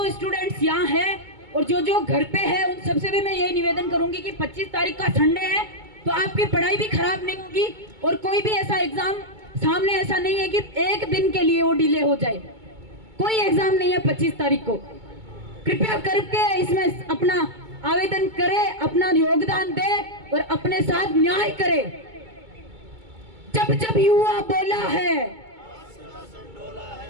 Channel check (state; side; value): late; left; 2.2 ms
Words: स्टूडेंट्स यहाँ हैं और जो घर पे है उन सबसे भी मैं यही निवेदन करूंगी कि 25 तारीख का संडे है तो आपकी पढ़ाई भी खराब नहीं होगी और कोई भी ऐसा एग्जाम सामने ऐसा नहीं है कि एक दिन के लिए वो डिले हो जाए। कोई एग्जाम नहीं है 25 तारीख को। कृपया करके इसमें अपना आवेदन करे, अपना योगदान दे और अपने साथ न्याय करे। जब जब युवा बोला है,